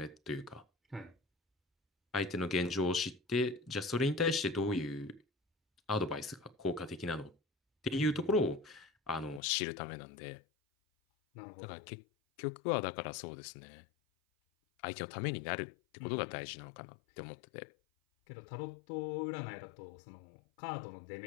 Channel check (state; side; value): drops out; right; at 9.4 s